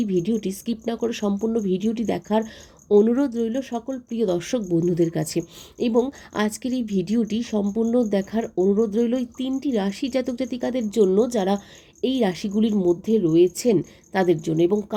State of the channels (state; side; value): identical; both; correlation 1.00